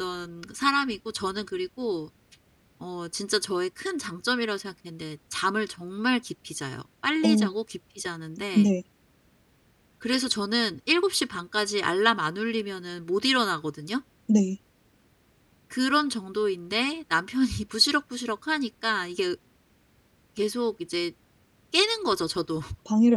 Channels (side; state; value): both; identical; correlation 1.00